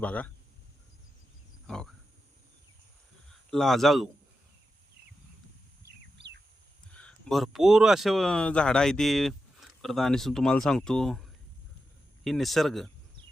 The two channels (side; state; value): both; normal; correlation 0.89